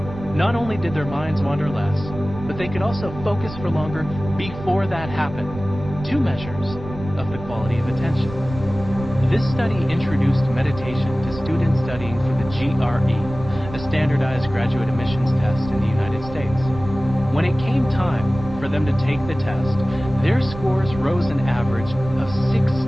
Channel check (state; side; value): noise; right; rumble, 12 dB below the sound